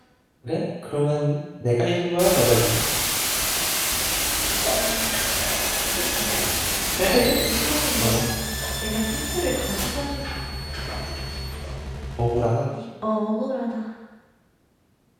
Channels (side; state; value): both; identical; correlation 1.00